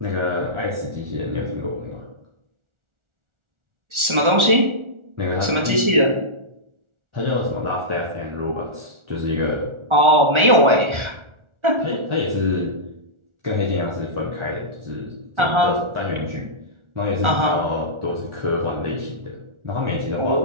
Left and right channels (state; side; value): late; left; 1.4 ms